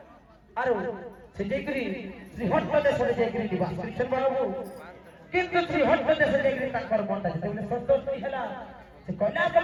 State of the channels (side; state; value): both; identical; correlation 1.00